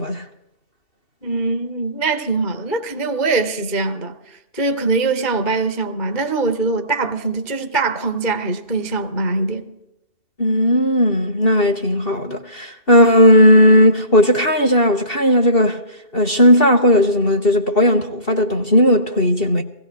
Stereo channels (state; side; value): late; right; 2.7 ms